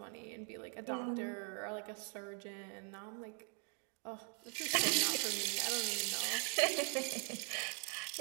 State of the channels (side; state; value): left; quieter; 36.8 dB